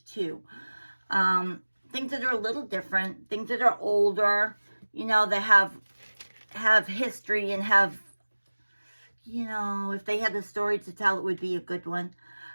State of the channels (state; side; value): inverted; both; correlation -1.00